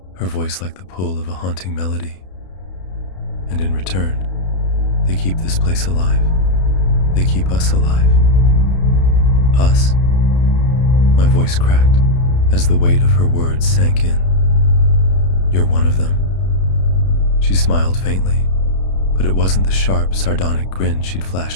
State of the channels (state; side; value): late; right; 32 ms